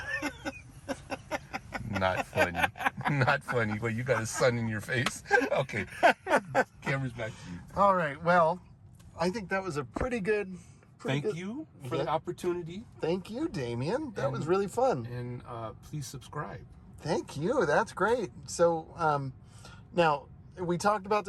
Not funny. Not funny. Well, you got a sun in your face. Okay. Camera's back to you. All right. Well, I think that was a pretty good. Thank you for the opportunity. Thank you, Damion. That was really fun. And please subscribe. Thank you. That's great. So, now we talked about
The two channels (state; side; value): identical; both; correlation 1.00